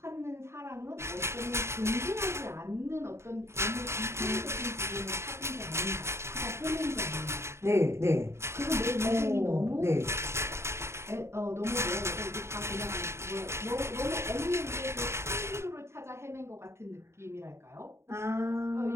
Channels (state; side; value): late; left; 0.13 ms